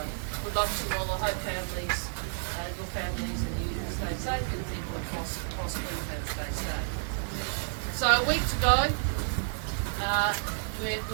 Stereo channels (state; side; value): silent; left; digital silence